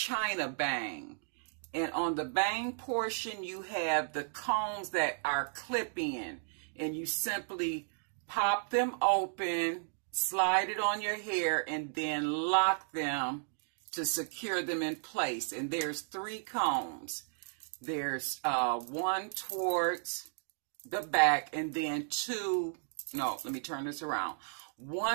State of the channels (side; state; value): left; silent; digital silence